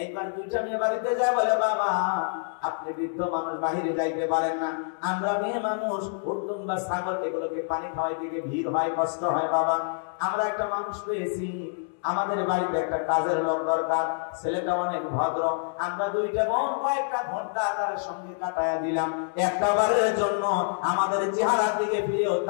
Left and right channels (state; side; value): silent; right; digital silence